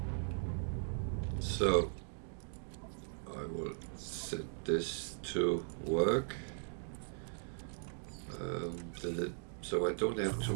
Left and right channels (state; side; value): silent; left; digital silence